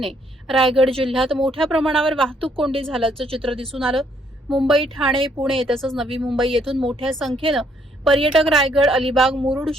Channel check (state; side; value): normal; both; correlation 0.69